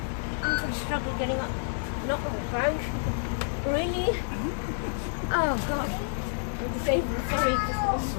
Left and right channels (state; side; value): silent; right; digital silence